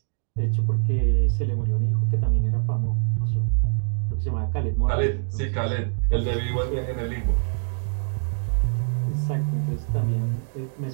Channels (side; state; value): left; silent; 62 dB below the other